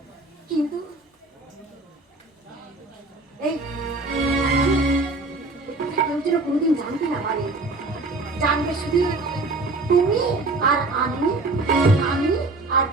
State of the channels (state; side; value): quieter; left; 3.2 dB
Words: কিন্তু এই কেউ যেন কোনোদিন জানতে না পারে। জানবে শুধু তুমি আর আমি, আমি আর